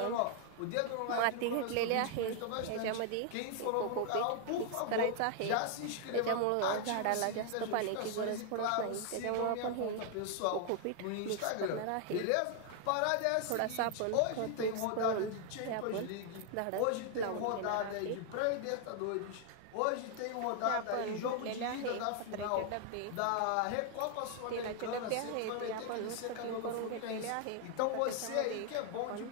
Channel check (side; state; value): both; different; correlation 0.00